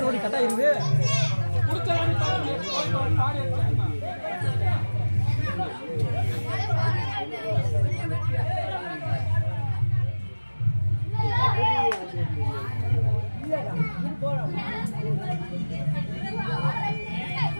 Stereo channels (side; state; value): both; inverted; correlation -1.00